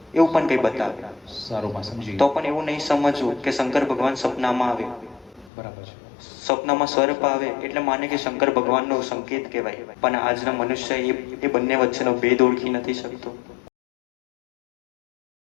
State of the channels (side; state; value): right; drops out; at 5.5 s